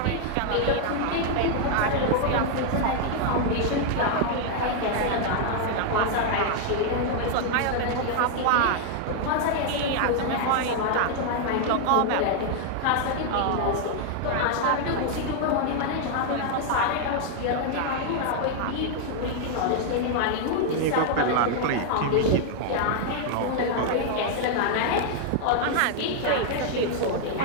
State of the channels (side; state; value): both; different; correlation 0.00